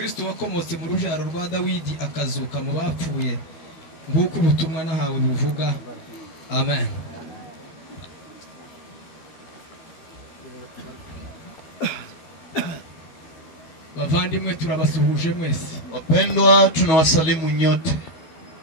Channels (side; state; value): right; late; 12 ms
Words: wakomotse mu rujaro rwa Dawidi akazuka mu bapfuye, nguko ubutumwa nahawe buvuga. Amen. Bavandimwe turabasuhuje mwese. Wapendwa, tunawasalimu nyote.